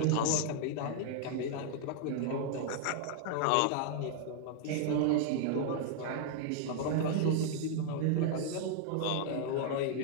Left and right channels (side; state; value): both; different; correlation 0.00